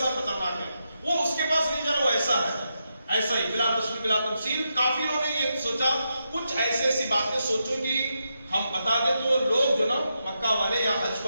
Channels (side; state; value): both; inverted; correlation -0.85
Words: خطرناک ہے، وہ اس کے پاس نہیں جا رہا وہ ایسا ہے. ایسا ہی بلا تشبیہ بلا تمثیل کافروں نے یہ سوچا. کچھ ایسی باتیں سوچو کہ ہم بتا دیں تو لوگ جو نا مکہ والے یا حج